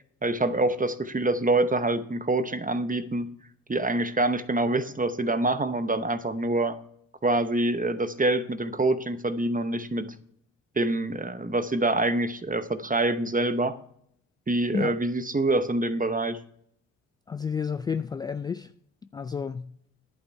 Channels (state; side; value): normal; both; correlation 0.38